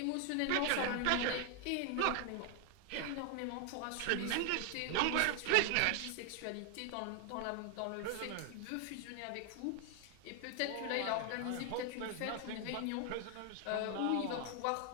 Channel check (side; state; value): both; different; correlation 0.00